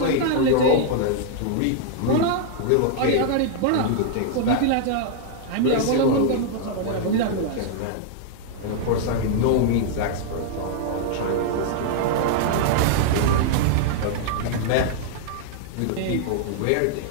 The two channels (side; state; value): both; different; correlation -0.01